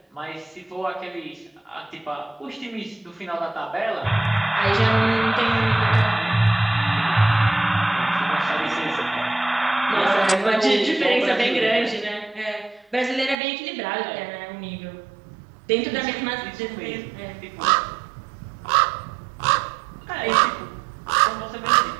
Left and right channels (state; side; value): drops out; left; at 13.4 s